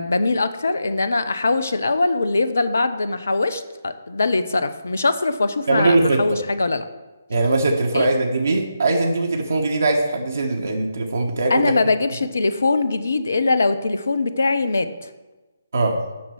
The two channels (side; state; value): both; inverted; correlation -0.86